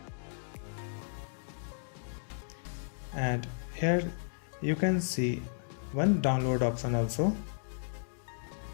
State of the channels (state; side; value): silent; right; digital silence